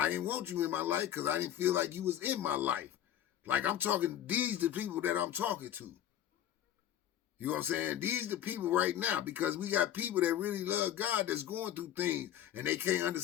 didn't want you in my life because I didn't feel like you was in my life. Like I'm talking, these the people that I'm talking to. You know what I'm saying? These the people right now, because we got people that really love God that's going through things and they can't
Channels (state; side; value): quieter; right; 11.1 dB